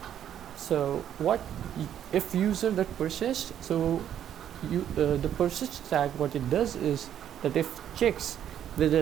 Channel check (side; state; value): left; quieter; 10.1 dB